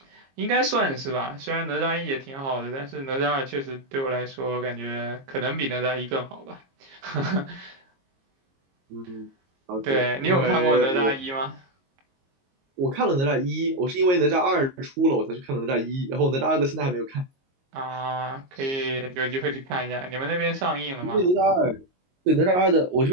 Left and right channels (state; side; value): late; left; 22 ms